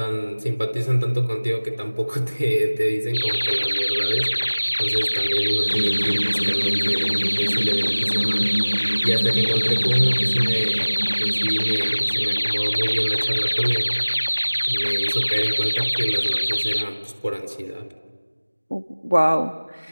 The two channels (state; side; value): inverted; both; correlation -1.00